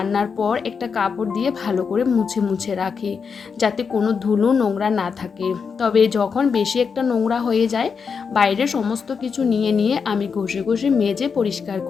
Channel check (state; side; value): quieter; right; 5.8 dB